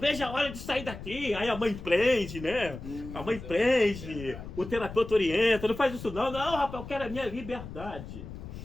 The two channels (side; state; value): left; noise; rumble, 11 dB below the sound